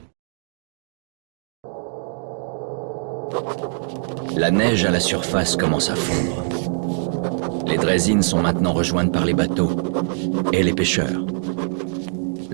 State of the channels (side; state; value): left; silent; 64 dB below the other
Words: La neige à la surface commence à fondre. Les draisines sont maintenant rejointes par les bateaux et les pêcheurs.